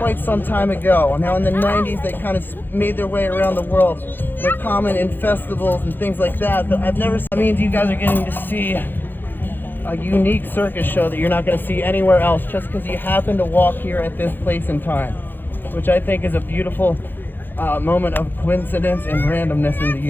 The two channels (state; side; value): late; right; 0.095 ms